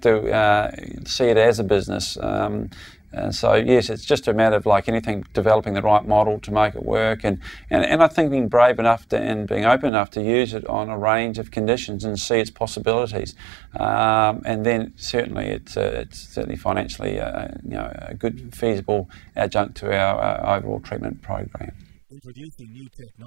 to see it as a business. And so yes, it's just a matter of, like anything, developing the right model to make it work, and I think being brave enough and being open enough to use it on a range of conditions and see its possibilities. And then certainly it's certainly financially a good feasible adjunct to our overall treatment program. Introducing new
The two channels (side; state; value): left; drops out; at 9.9 s